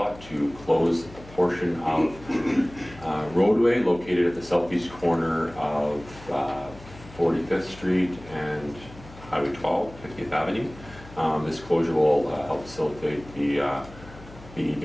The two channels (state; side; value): noise; left; hum, 19 dB below the sound